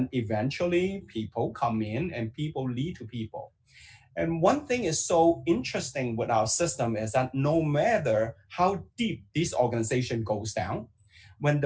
eventually people come in and people lead to people. And one thing is so interesting with our system is that no matter how deep this organization goes down, when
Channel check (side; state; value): both; identical; correlation 1.00